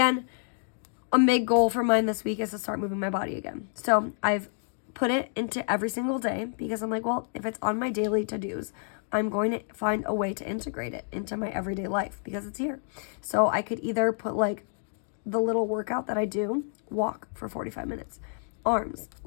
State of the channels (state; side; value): silent; right; digital silence